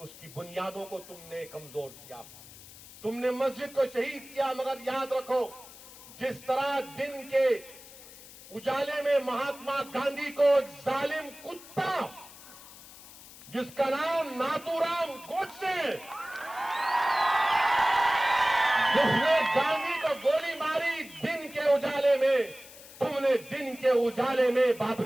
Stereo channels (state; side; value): noise; left; hiss, 18 dB below the sound